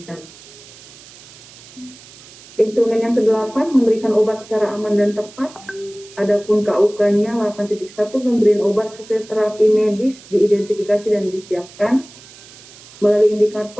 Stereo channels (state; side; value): noise; right; hiss, 21 dB below the sound